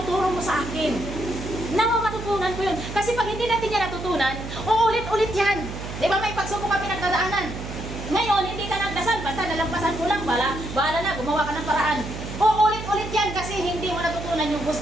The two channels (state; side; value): noise; right; hum, 8 dB below the sound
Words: mo sa akin? Nawa matutunan ko yun. Kasi pag hindi natin yan natutunan, uulit-ulit yan. Di ba may pagsubok ka pinagdadaanan? Ngayon, hindi ka nagdasal, basta nalampasan mo lang, bahala na, gumawa ka ng paraan. Uulit-ulit yan kasi hindi mo natutunan yung